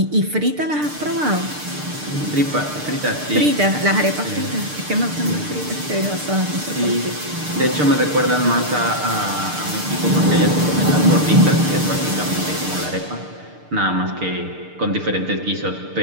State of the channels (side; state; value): left; late; 6.7 ms